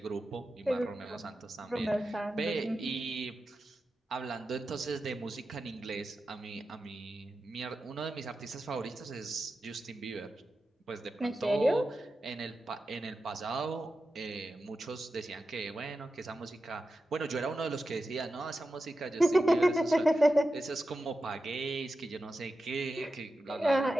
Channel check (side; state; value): both; normal; correlation 0.91